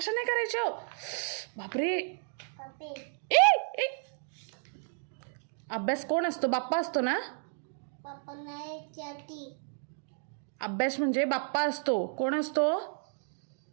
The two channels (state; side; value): silent; left; 56 dB below the other